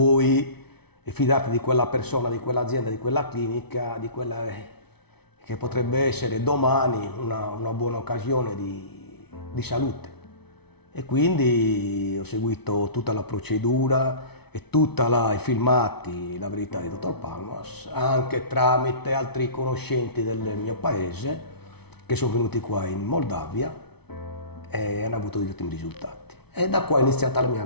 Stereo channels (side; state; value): right; late; 0.98 ms